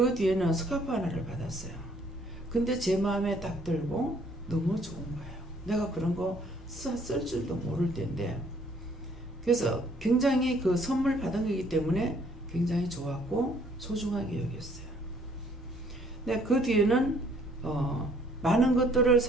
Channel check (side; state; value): both; normal; correlation 0.62